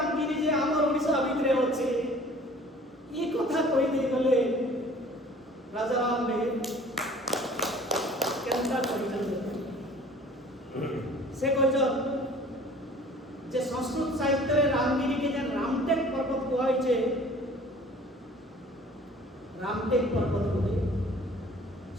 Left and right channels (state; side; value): normal; both; correlation 0.50